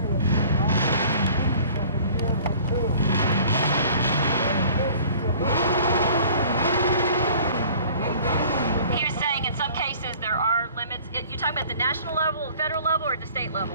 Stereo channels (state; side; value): inverted; both; correlation -0.49